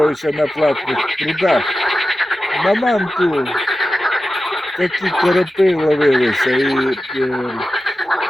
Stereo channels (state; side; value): normal; both; correlation 0.93